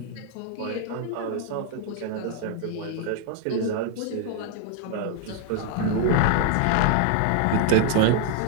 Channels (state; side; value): different; both; correlation 0.00